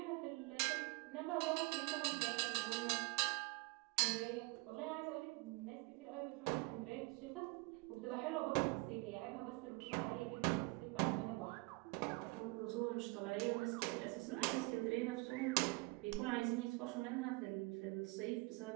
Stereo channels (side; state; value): left; quieter; 26.4 dB